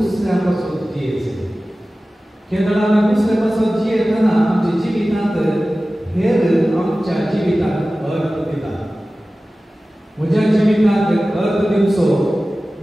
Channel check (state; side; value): normal; both; correlation 0.96